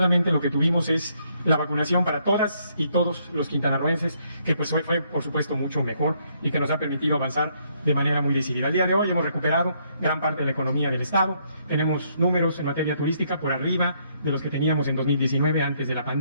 lo que tuvimos es la vacunación para todas y todos los quintanarroenses, que pues fue por supuesto mucho mejor y que nos ha permitido avanzar de manera muy decidida. Al día de hoy hemos recuperado gran parte de la economía del Estado, tenemos números en materia turística por arriba de los que teníamos en 2019 antes de la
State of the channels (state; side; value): inverted; both; correlation -0.71